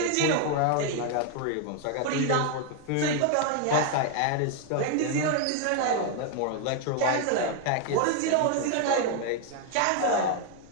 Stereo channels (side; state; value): both; different; correlation 0.00